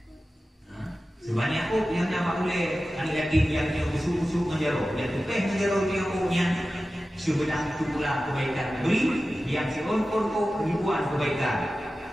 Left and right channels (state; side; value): normal; both; correlation 0.94